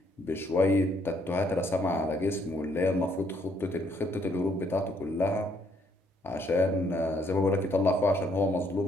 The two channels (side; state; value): both; normal; correlation 0.69